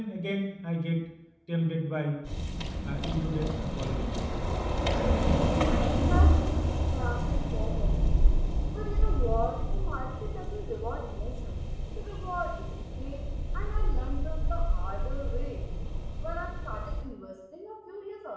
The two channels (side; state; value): both; identical; correlation 1.00